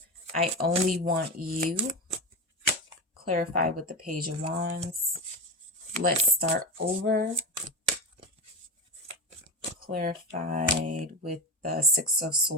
I only want you. Clarify with the Page of Wands. Let's start over. Clarified with the Six of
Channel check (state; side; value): normal; both; correlation 0.20